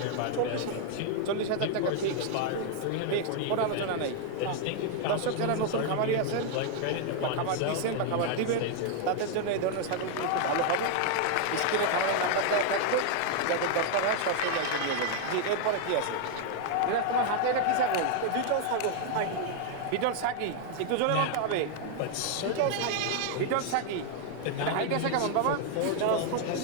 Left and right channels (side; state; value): both; different; correlation 0.00